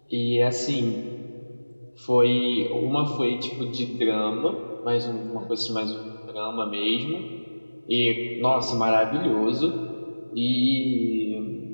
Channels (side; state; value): both; inverted; correlation -1.00